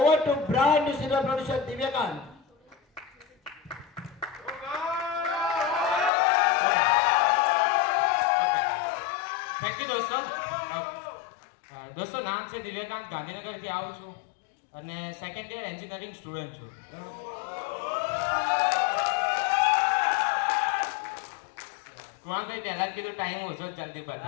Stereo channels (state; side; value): drops out; right; at 6.1 s